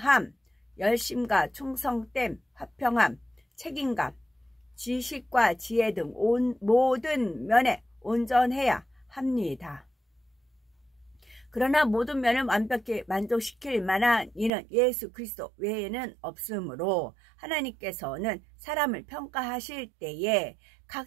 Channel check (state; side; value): drops out; left; at 14.5 s